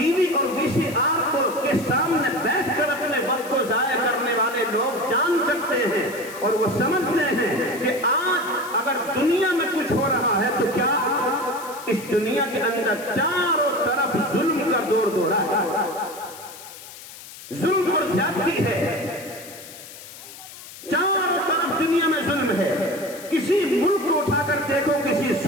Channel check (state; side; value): noise; left; hiss, 16 dB below the sound